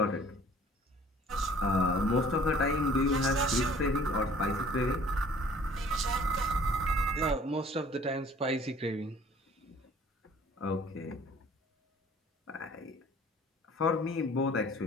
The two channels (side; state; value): both; normal; correlation 0.53